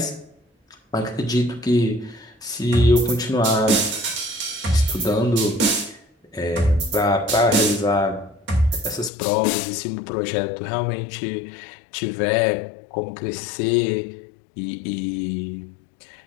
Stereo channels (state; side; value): drops out; right; at 9.1 s